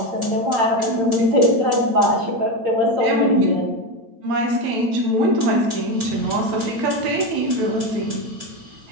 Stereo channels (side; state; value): left; late; 8.8 ms